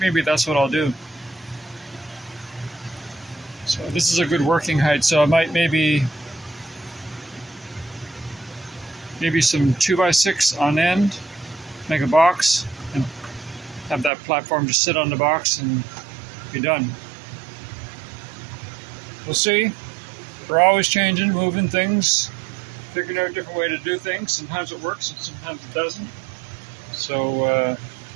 that's what I'll do. So this is a good working height, so I might maybe some 2x6 on end, make a box, and have that platform just sit on the box and be done. We'll see. We're always changing, moving things, figuring out a different way to do things. Sometimes it works and sometimes it doesn't. So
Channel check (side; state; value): left; drops out; at 14.1 s